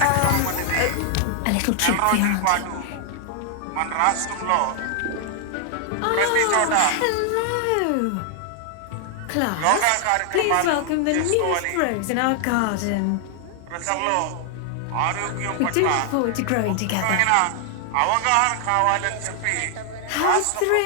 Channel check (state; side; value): different; both; correlation 0.00